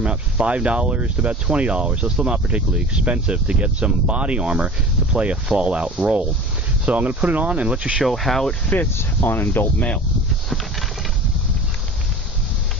about $5 to about $20. So it's still not particularly expensive to get some body armor to play a Fallout role. So I'm going to put it on and let you show how it fits on an adult male.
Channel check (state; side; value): normal; both; correlation 0.39